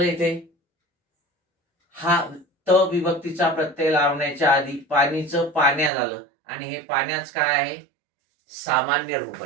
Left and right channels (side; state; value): left; drops out; at 5.9 s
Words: इथे, हा त विभक्तीचा प्रत्यय लावण्याच्या आधी पाणीचं पाण्या झालं आणि हे पाण्याच काय आहे, सामान्य रूप